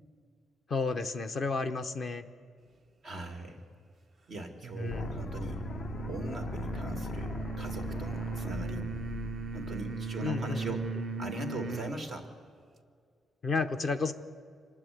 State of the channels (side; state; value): both; normal; correlation 0.67